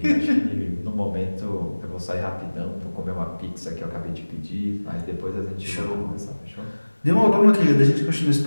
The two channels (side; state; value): both; inverted; correlation -1.00